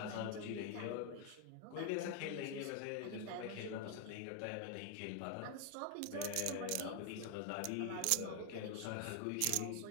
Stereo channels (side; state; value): both; different; correlation 0.00